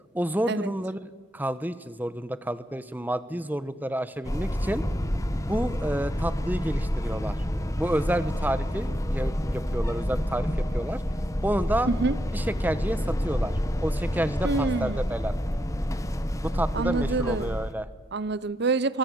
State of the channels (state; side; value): normal; both; correlation 0.81